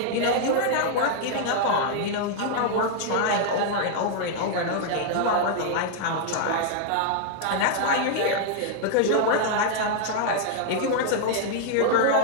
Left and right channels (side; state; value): both; different; correlation -0.01